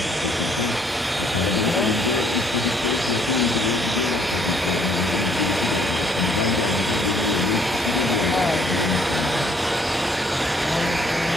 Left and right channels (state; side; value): normal; both; correlation 0.64